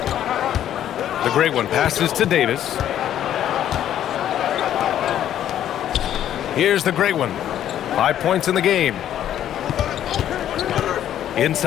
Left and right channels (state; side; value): quieter; right; 11.0 dB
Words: The great one passes to Davis. Here's the great one. 5 points in the game.